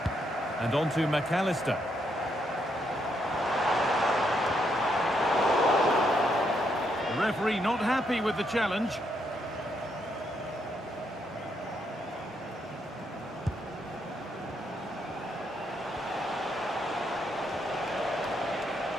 And on to McAllister. The referee not happy with the challenge.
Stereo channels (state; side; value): normal; both; correlation 0.77